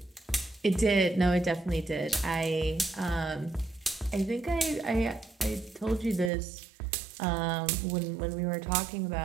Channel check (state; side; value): drops out; left; at 6.3 s